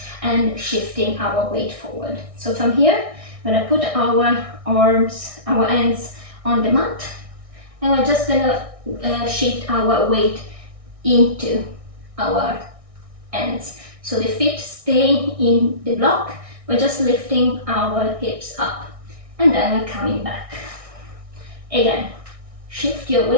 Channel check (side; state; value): left; late; 1.6 ms